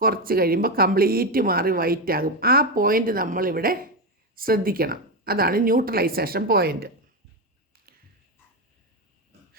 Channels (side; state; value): both; normal; correlation 0.11